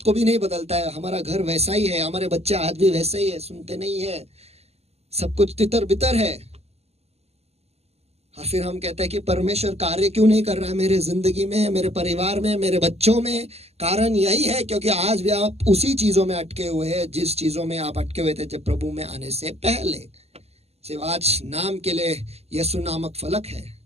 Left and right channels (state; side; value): late; left; 0.30 ms